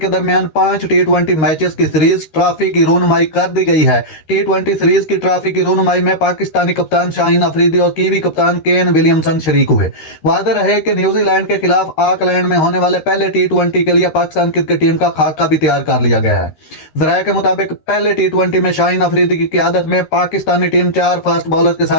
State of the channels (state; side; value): late; right; 13 ms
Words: दरमियान 5 टी20 मैचेस की सीरीज ट्रॉफी की रोनमाई कर दी गई है। टी20 सीरीज की ट्रॉफी की रोनमाई में पाकिस्तानी कप्तान शाहीन अफरीदी और कीवी कप्तान केन विलियमसन शरीक हुए। वादे रहे कि न्यूजीलैंड के खिलाफ ऑकलैंड में होने वाले पहले टी20 के लिए पाकिस्तान क्रिकेट टीम का खाका भी तैयार कर लिया गया है। जराये के मुताबिक पहले टी20 में शाहीन अफरीदी की क़यादत में पाकिस्तानी टीम 4 फास्ट बॉलर्स के